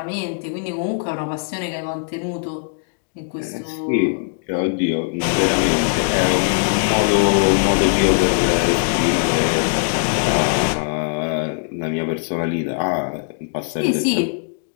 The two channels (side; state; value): right; silent; digital silence